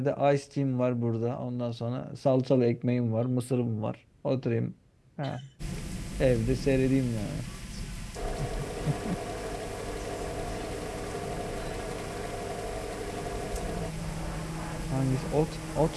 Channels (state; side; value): identical; both; correlation 1.00